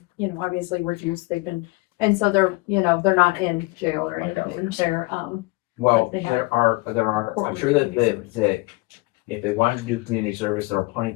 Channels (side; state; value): right; quieter; 23.7 dB